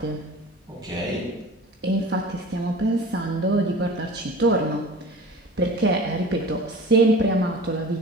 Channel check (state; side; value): normal; both; correlation 0.40